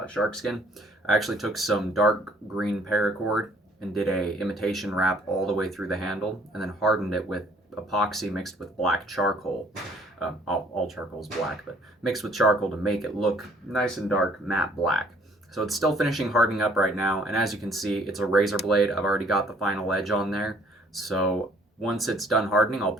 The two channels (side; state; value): both; normal; correlation 0.59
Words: shark skin, I actually took some dark green paracord and did a imitation wrap all the way through the handle, and then hardened it with epoxy mixed with black charcoal. All charcoal is black, but mixed with charcoal to make it look nice and dark, matte black. So it's still finishing hardening up right now, and as you can see, it's a razor blade. I've already got the final edge on there. So once it's done hardening, I'll